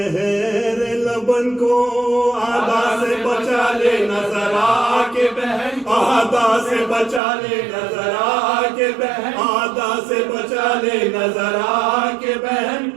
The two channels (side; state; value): left; drops out; at 7.2 s